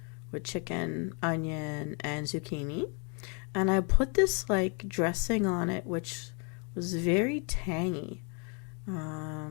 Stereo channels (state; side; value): quieter; right; 36.2 dB